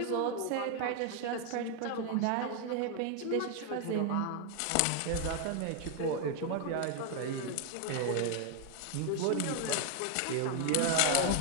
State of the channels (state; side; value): different; both; correlation 0.01